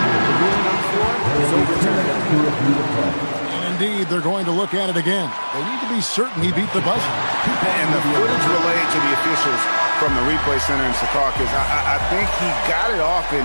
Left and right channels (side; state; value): both; inverted; correlation -1.00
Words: the ruling on the floor is overturned. And indeed, they're going to look at it again. They need to be certain he beat the buzzer. And the footage relayed to the officials from the replay center in Secaucus, I think he got it off